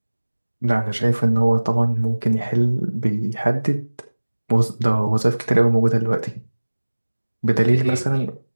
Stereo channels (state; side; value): inverted; both; correlation -1.00